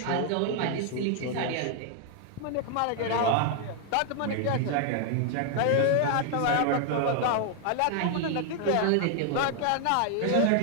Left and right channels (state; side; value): different; both; correlation 0.00